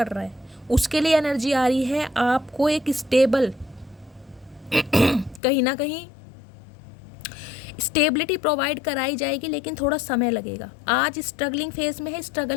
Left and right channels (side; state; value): right; drops out; at 5.4 s